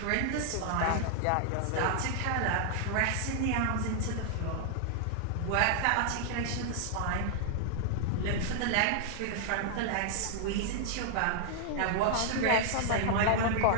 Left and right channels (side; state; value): both; different; correlation -0.01